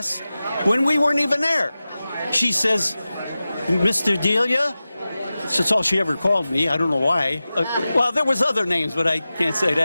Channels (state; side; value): inverted; both; correlation -0.95